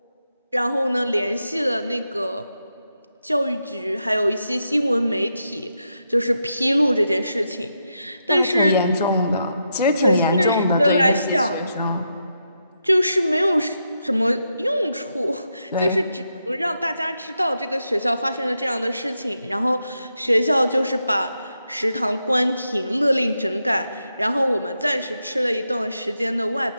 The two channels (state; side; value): inverted; both; correlation -0.84